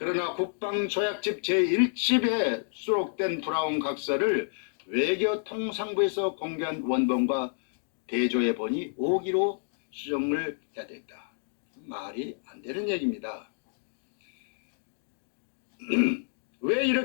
국방조약집 제1집에 수록된 브라운 각서를 외교통상부에서 공개한 원본과 대조해 보니 5기로 수정을 해야 됐다. 말이 안 되는 얘기입니다. 왜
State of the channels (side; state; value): right; silent; digital silence